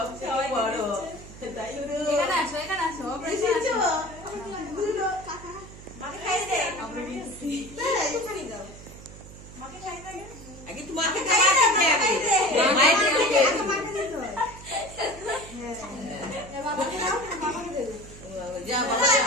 থেকে বড় তাই এখানে আসো, এখানে আসো। মাকে খাইয়ে দে। মাকে খাইয়ে দে। আগে তোমাকে খাইয়ে দে, আগে মাকে দে। যা বাবা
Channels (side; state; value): right; noise; hum, 16 dB below the sound